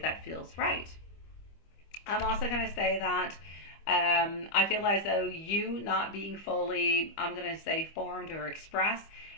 feels right. I'm also going to say that I feel as though you not being fully, I'm going to say, formed or expressed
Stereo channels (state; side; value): late; right; 25 ms